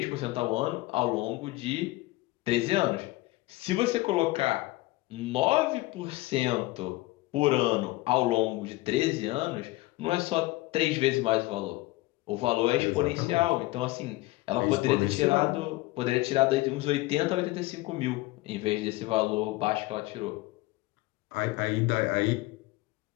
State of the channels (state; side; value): quieter; right; 19.9 dB